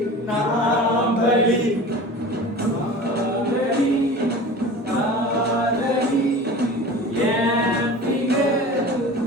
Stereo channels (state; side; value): normal; both; correlation 0.37